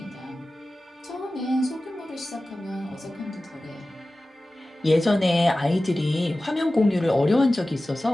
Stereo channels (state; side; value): normal; both; correlation 0.96